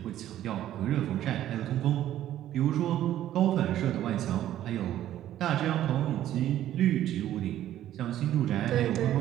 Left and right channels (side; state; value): left; quieter; 12.4 dB